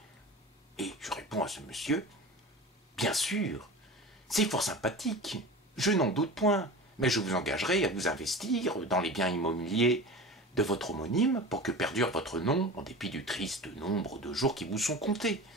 Et je réponds à ce monsieur, bien sûr, c'est fort sympathique, je n'en doute point, mais je vous engagerai à vous investir dans les biens immobiliers de votre homonyme pour que perdure votre nom en dépit du triste nombre de jours qui vous sont comptés.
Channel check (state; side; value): normal; both; correlation 0.33